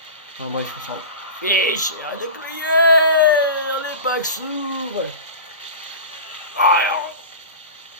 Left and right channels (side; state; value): both; inverted; correlation -0.31